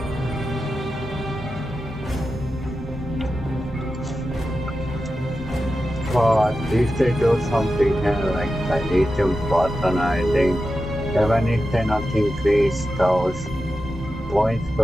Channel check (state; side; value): normal; both; correlation 0.91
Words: But if they do something like the lithium button, I think, even if they not increase those points